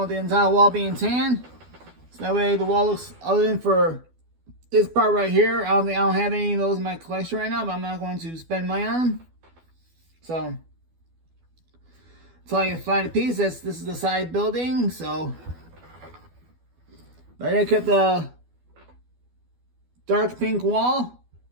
the entire wall being tan. So that way the wall looks, other than for this part right here, I don't have any of those in my collection right now, but I'm not going to spend money on them. So until I can find a piece, this is the side building. So but I kept the dark pink wall.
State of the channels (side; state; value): left; late; 12 ms